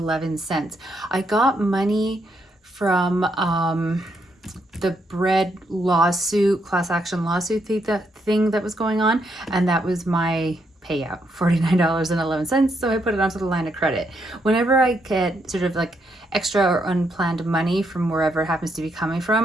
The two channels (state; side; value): normal; both; correlation 0.77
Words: I got money from the bread lawsuit, class action lawsuit thing that was going on, and that was my payout, $49.11. So I put it onto the line of credit. Whenever I get sort of like extra or unplanned money from wherever it happens to be coming